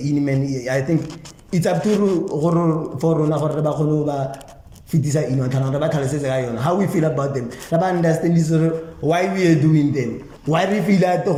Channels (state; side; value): identical; both; correlation 1.00